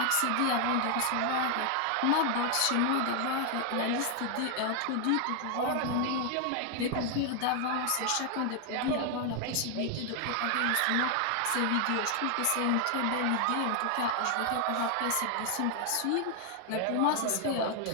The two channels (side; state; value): both; different; correlation 0.00